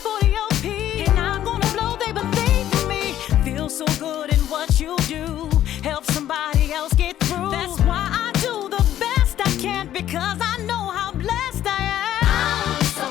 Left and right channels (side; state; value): right; quieter; 11.9 dB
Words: the OP. And I'm gonna blow, they believe in me. Feel so good in what you do. Help somebody else get through. That's why I do the best I can, because I know how blessed I am. I'm so